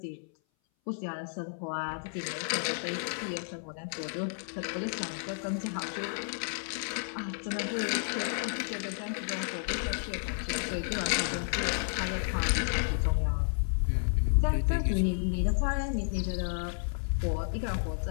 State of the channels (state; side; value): silent; right; 57 dB below the other